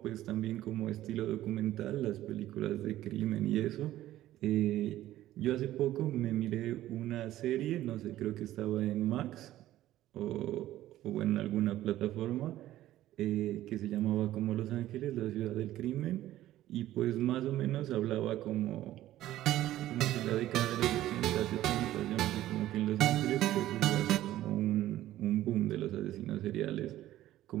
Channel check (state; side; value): quieter; left; 14.2 dB